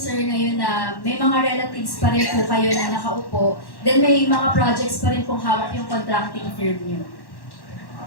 ngayon na may mga relatives pa rin po kayo na nakaupo, then may mga projects pa rin pong hawak yung contracting firm niyo.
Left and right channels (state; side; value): late; right; 1.1 ms